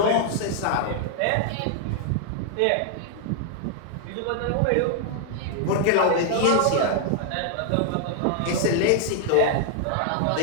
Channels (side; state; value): both; different; correlation 0.00